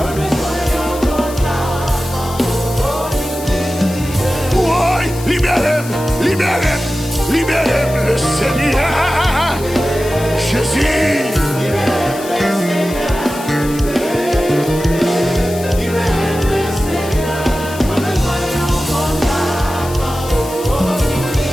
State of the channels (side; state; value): left; noise; hiss, 14 dB below the sound